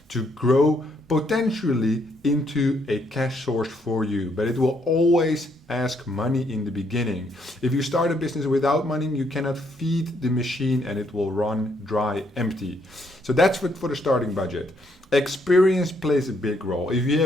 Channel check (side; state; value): both; normal; correlation 0.72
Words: to grow potentially into a cash source for you, but it will always ask money in the beginning. If you start a business without money, you cannot feed the machine and it will run dry empty. So that's for the starting budget. Experience plays a big role. If you